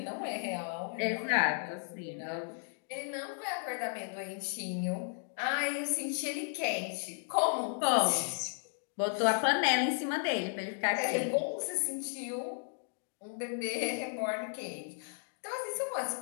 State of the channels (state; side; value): silent; right; 55 dB below the other